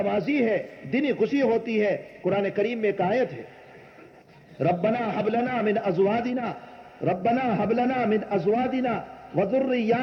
ہے، دینی خوشی ہوتی ہے۔ قرآن کریم میں ایک آیت ہے، ربنا حب لنا من ازواجنا، ربنا حب لنا من ازواجنا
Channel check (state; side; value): identical; both; correlation 1.00